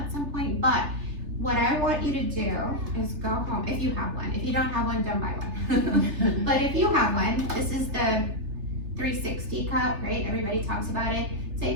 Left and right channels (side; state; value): left; late; 3.3 ms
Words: some point, but what I want you to do is go home, if you have one. If you don't have one, don't buy one. But if you have one, this is the 360 cup, right? Everybody talks about it.